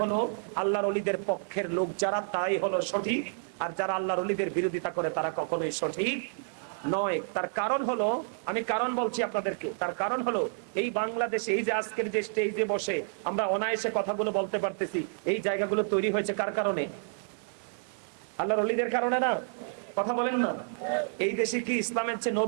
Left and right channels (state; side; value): silent; left; 58 dB below the other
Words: হলো আল্লাহর ওলিদের পক্ষের লোক যারা, তাই হলো সঠিক। আর যারা আল্লাহর ওলিদের বিরোধিতা করে তারা কখনোই সঠিক নয়। তার কারণ হলো, আমি কারণ বলছি আপনাদেরকে, তার কারণ হলো এই বাংলাদেশে এই যে আজকের যে স্টেজে বসে আমরা অনায়াসে কথাগুলো বলতে পারতেছি, এই জায়গাগুলো তৈরি হয়েছে কার কারণে? আল্লাহর ওলিদের কারণে না? কথা বলেন না। এই দেশে কি ইসলামের চেয়ে